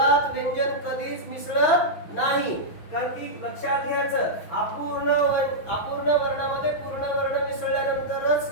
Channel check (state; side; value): late; right; 6.1 ms